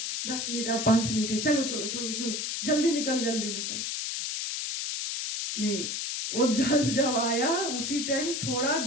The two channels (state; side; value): noise; left; hiss, 3 dB below the sound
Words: 10 मिनट, 5 मिनट है, चलो जल्दी निकल। नहीं, वो जल जब आया उसी टाइम, थोड़ा